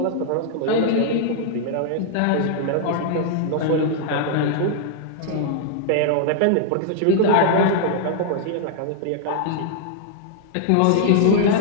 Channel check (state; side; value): different; both; correlation -0.01